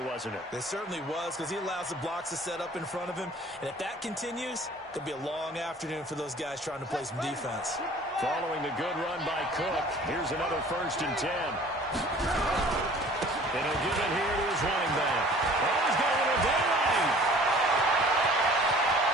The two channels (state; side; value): normal; both; correlation 0.49